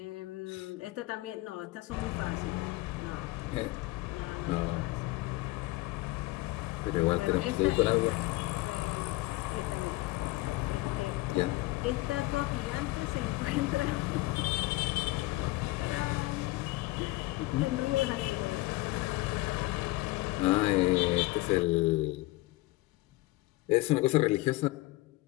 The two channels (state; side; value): quieter; right; 20.3 dB